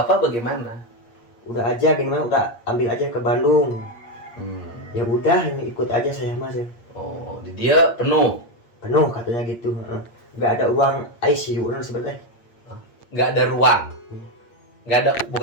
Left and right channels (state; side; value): late; right; 8.6 ms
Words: bagaimana? Udah aja gini mah udah ambil aja ke Bandung. Ya udah ini ikut aja saya mas ya. Oh, di dia penuh, Penuh katanya gitu. Nggak ada ruang ICU sebenarnya. nggak ada ruang,